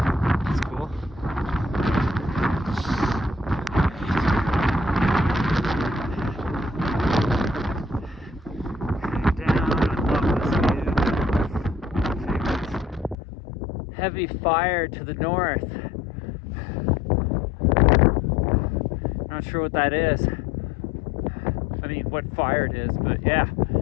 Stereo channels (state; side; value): drops out; right; at 13.2 s